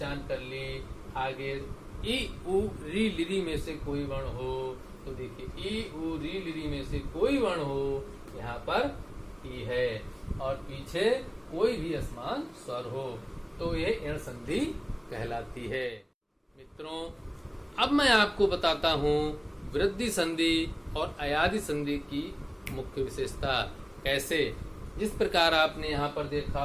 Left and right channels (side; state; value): both; identical; correlation 1.00